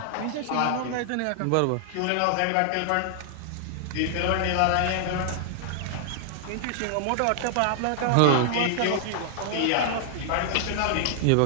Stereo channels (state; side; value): different; both; correlation -0.01